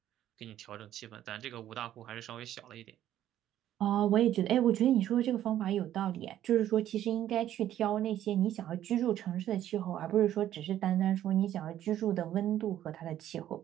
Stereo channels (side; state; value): left; quieter; 11.9 dB